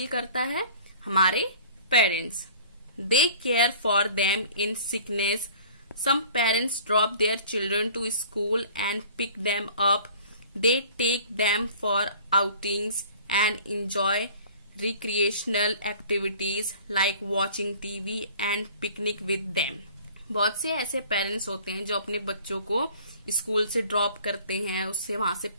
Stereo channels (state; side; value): inverted; both; correlation -0.47